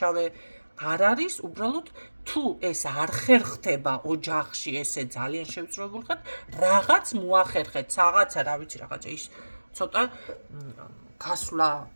არ არის უბრალოდ თუ ეს არ ხერხდება ოჯახში ესე ძალიან შევწროებულ ხარ რაღაც მოახერხეთ რაღაცა რა ვიცი რაღაცა ის ცოტა გასვლა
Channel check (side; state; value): both; inverted; correlation -1.00